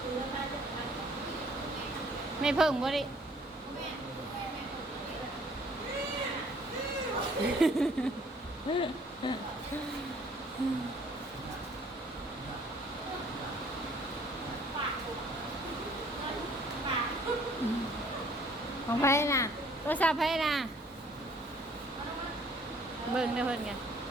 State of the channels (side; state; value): both; normal; correlation 0.58